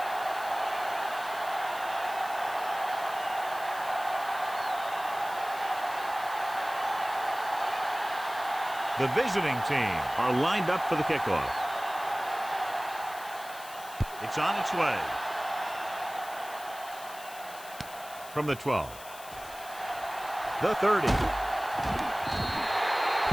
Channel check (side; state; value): left; noise; hiss, 16 dB below the sound